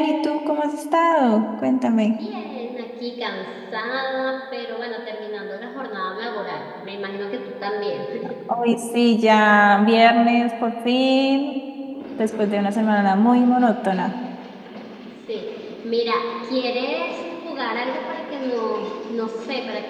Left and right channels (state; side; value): identical; both; correlation 1.00